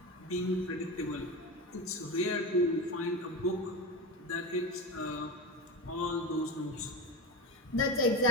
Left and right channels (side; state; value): both; normal; correlation 0.21